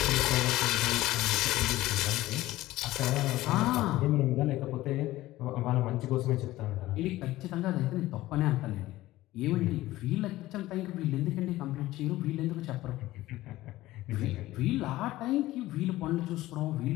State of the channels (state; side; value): quieter; right; 16.7 dB